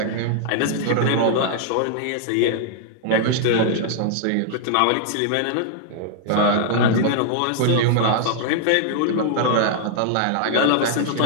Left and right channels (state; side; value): different; both; correlation -0.01